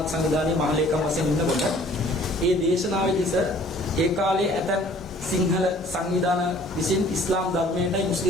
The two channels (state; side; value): normal; both; correlation 0.54